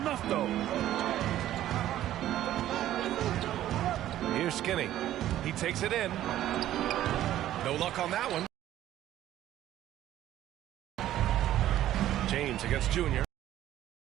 though? Here's Skinny. He takes it in. No luck on that one. James against Junior.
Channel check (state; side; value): quieter; left; 13.0 dB